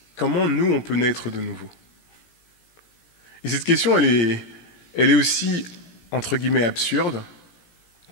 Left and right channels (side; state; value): right; late; 17 ms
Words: comment nous on peut naître de nouveau? Et cette question, elle est aussi, entre guillemets, absurde